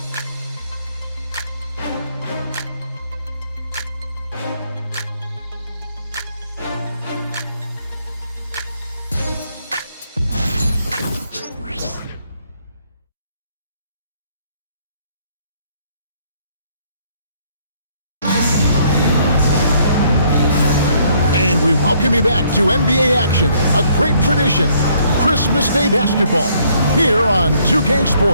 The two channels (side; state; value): both; inverted; correlation -0.67